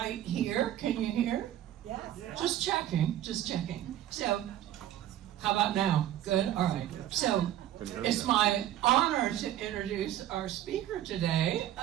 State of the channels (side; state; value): left; quieter; 12.5 dB